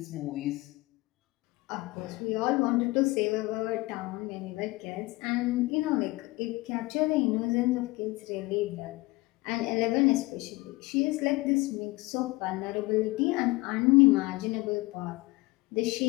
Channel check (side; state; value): right; quieter; 21.6 dB